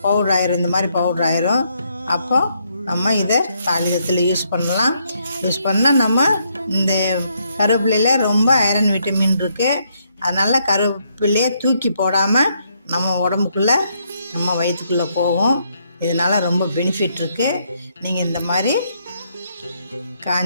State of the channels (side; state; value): both; inverted; correlation -0.74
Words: பவுடர் ஆயிரும். இந்த மாதிரி பவுடர் ஆயிரும். அப்போ நம்ம இதை தாளிதத்தில் யூஸ் பண்ணால் நம்ம இந்த கருவேப்பிலையில் ரொம்ப ஐரன் விட்டமின் இருக்குது. அதனால் கருவேப்பிலையை தூக்கி போடாமல் நம்ம உடம்புக்குள்ளே நம்ம வயிற்றுக்குள்ளே போகும். இதனால் ரொம்ப பெனிஃபிட் இருக்குது. நீங்கள் இந்த மாதிரி